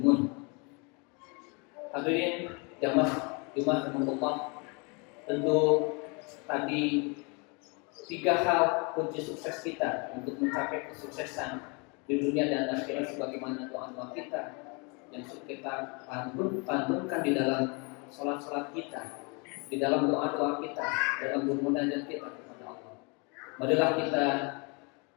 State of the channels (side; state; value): right; quieter; 32.0 dB